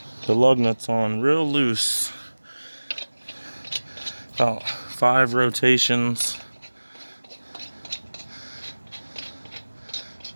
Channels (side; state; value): both; inverted; correlation -1.00